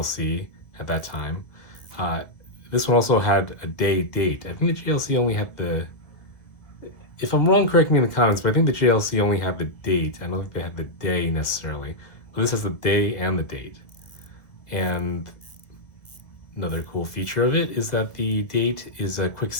at that time. This one also had a day date. I think the JLC only had the, if I'm wrong, correct me in the comments, but I think the JLC only had the date. I don't think they had the day necessarily. But this has the day and the date. And another cool feature of it is that the date is a quick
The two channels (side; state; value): right; late; 1.7 ms